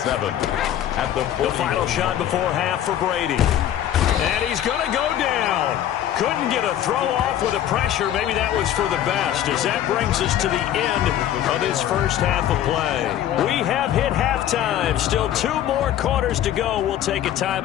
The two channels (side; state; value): right; quieter; 11.3 dB